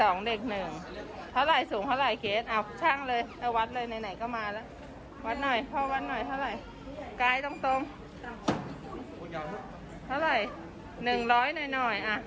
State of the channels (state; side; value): identical; both; correlation 1.00